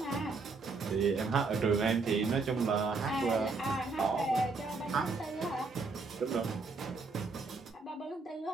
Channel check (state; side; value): quieter; left; 4.0 dB